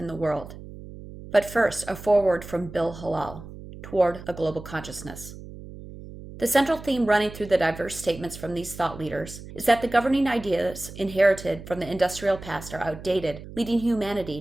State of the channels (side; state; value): right; noise; hum, 14 dB below the sound